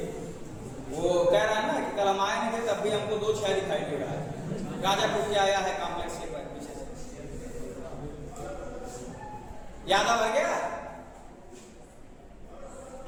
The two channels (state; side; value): identical; both; correlation 1.00